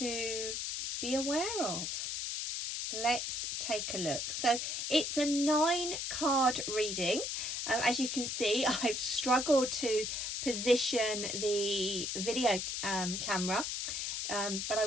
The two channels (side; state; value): left; noise; hiss, 2 dB below the sound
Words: be aware of? Let's take a look. So it's a 9-card reading. As you can see, I've struggled to position the video camera, but I